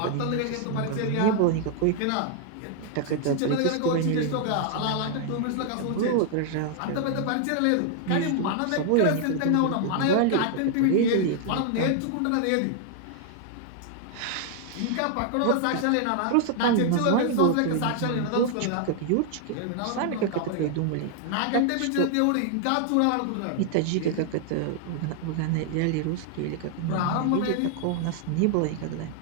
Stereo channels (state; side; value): different; both; correlation 0.00